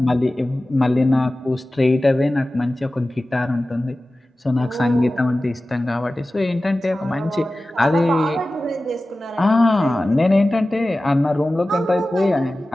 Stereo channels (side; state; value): both; normal; correlation 0.96